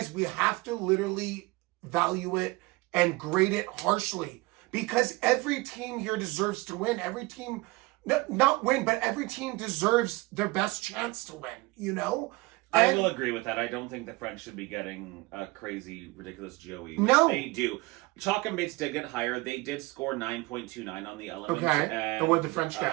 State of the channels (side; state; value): left; quieter; 23.0 dB